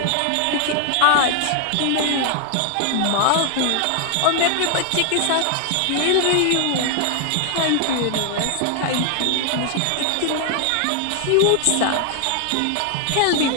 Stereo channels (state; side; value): different; both; correlation 0.00